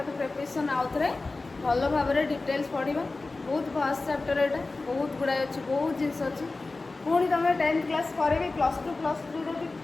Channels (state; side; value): quieter; right; 3.5 dB